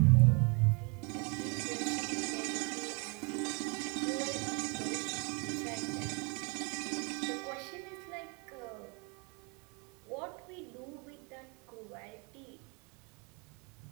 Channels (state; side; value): quieter; left; 31.9 dB